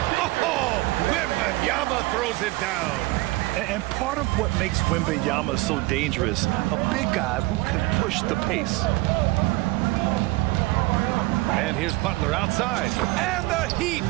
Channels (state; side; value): quieter; left; 20.9 dB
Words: Oh, Wembanyama throws it down. And part of what makes Wembanyama so dangerous, a big guy who can push the pace. And here's Butler outside. And the Heat,